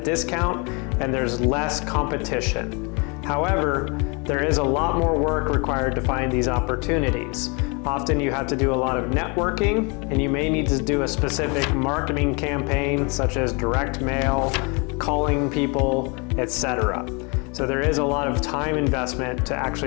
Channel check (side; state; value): right; quieter; 31.4 dB